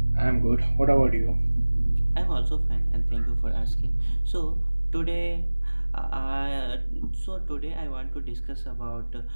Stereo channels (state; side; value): inverted; both; correlation -1.00